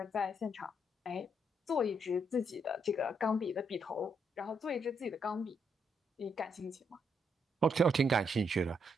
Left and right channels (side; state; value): both; normal; correlation 0.76